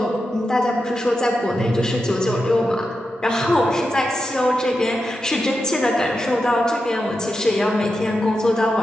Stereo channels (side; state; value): both; normal; correlation 0.89